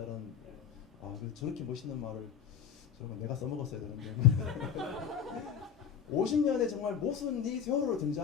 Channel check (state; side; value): quieter; right; 8.1 dB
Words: 그래서 저렇게 멋있는 말을 정말 내가 써먹었어야 되는데 50년의 정말 모순이 세월호로